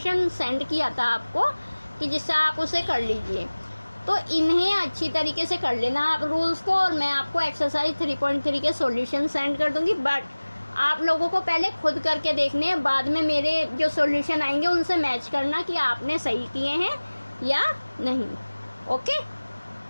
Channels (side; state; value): both; inverted; correlation -1.00